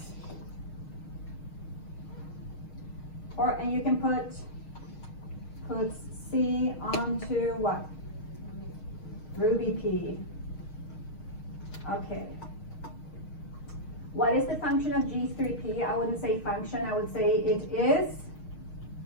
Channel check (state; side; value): late; right; 6.4 ms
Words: and you can put C onto what? Ruby P. Okay. What is the function of G3P? I wouldn't say function, I would say it is